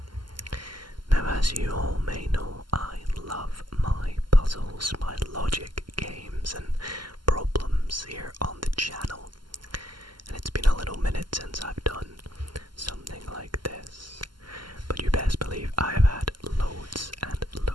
Now, as you all may know, I love my puzzles, my logic games and problems here on the channel, and it's been a little minute since I've done something like this, but you best believe I have had loads and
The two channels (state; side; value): late; left; 0.71 ms